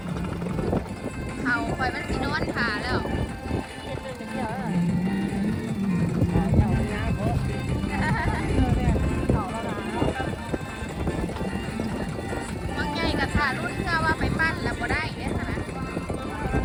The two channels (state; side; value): identical; both; correlation 1.00